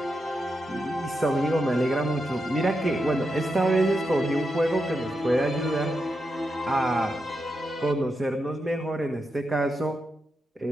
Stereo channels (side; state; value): both; normal; correlation 0.86